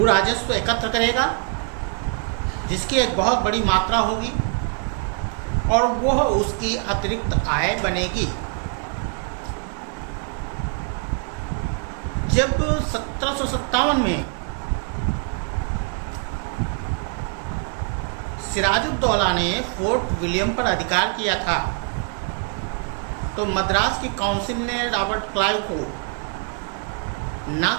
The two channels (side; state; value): left; quieter; 39.8 dB